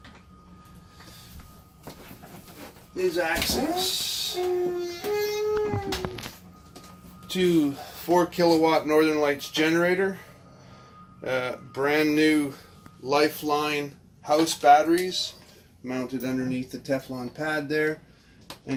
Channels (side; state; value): both; identical; correlation 1.00